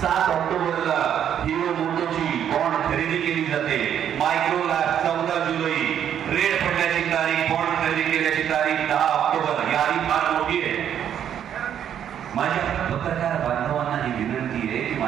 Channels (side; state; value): left; quieter; 9.4 dB